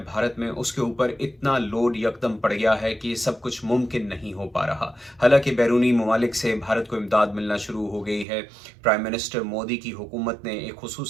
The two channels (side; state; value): left; drops out; at 8.2 s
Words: भारत में, उसके ऊपर इतना लोड यकदम पड़ गया है कि ये सब कुछ मुमकिन नहीं हो पा रहा। हालांकि बैरूनी ममालिक से भारत को इमदाद मिलना शुरू हो गई है। प्राइम मिनिस्टर मोदी की हुकूमत ने एक